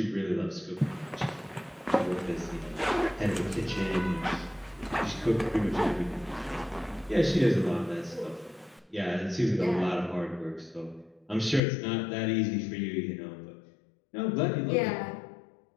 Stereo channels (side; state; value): right; drops out; at 11.6 s